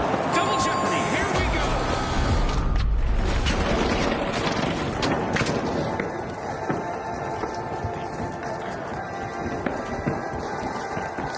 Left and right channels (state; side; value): identical; both; correlation 1.00